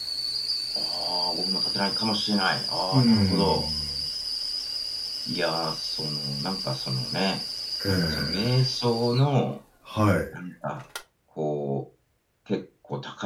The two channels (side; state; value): both; identical; correlation 1.00